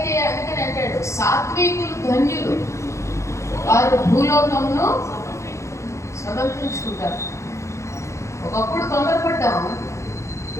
అందుకని అంటాడు సాత్వికులు ధన్యులు, వారు భూలోకమును స్వతంత్రించుకుంటారు. ఒకప్పుడు తొందరపడ్డాము,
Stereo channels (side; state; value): right; late; 0.14 ms